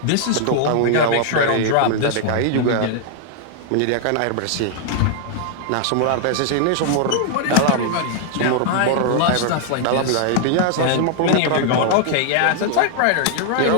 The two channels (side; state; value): both; different; correlation -0.01